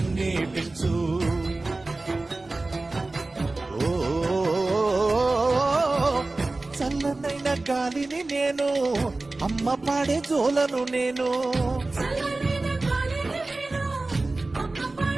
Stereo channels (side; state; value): left; quieter; 3.2 dB